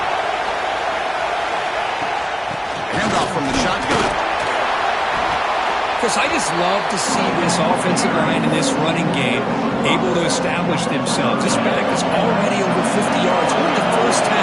Handoff from the shotgun. Chris, I just love to see this offensive line in this running game able to establish themselves. This back is already over 50 yards in the first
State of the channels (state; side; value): identical; both; correlation 1.00